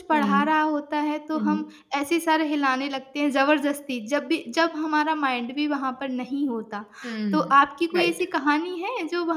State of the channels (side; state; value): both; identical; correlation 1.00